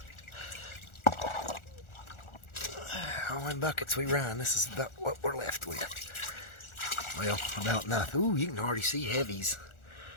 How many buckets we run? This is about what we're left with. Well, about nothing. Ooh, you can already see heavies.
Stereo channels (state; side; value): late; right; 1.4 ms